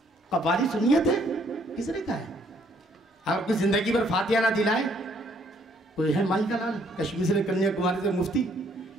कवारी सुन्नियत है, किसने कहा है? आपकी जिंदगी भर फातिहा ना दिलाए कोई है? माई का लाल कश्मीर से कन्याकुमारी से मुफ्ती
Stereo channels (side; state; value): both; normal; correlation 0.66